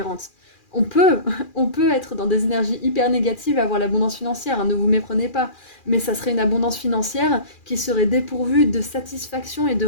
On peut, on peut être dans des énergies hyper négatives et avoir l'abondance financière, hein, ne vous méprenez pas. Mais ça serait une abondance financière qui serait dépourvue de satisfaction et de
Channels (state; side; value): late; right; 2.4 ms